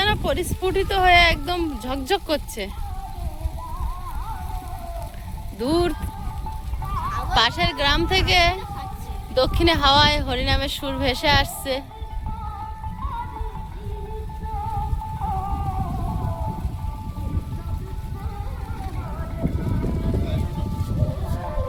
পরিস্ফুটিত হয়ে একদম ঝকঝক করছে। দূর পাশের গ্রাম থেকে দক্ষিণে হাওয়ায় হরিনামের সুর ভেসে আসছে।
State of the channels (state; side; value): identical; both; correlation 1.00